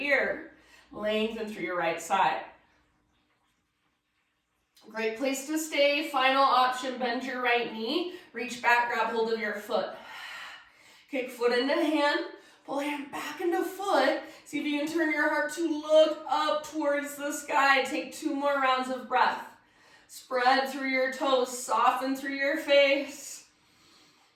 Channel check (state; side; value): identical; both; correlation 1.00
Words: Lengthen through your right side. Great place to stay. Final option, bend your right knee, reach back, grab hold of your foot. Kick foot into hand, pull hand back into foot. See if you can turn your heart to look up towards the sky. Take 2 more rounds of breath. Spread through your toes, soften through your face.